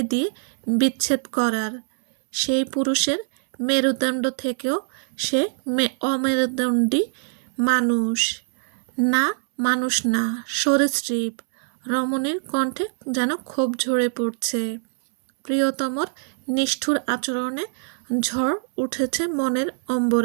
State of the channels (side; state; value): left; silent; 63 dB below the other